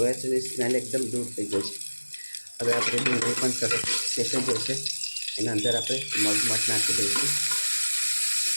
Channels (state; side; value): inverted; both; correlation -1.00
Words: છે અને સ્મેલ એકદમ દૂર થઈ ગઈ છે. હવે આપણે ડુંગળી પણ સરસ શેકાઈ જશે. એના અંદર આપણે મગ મઠ નાખી દઈશું.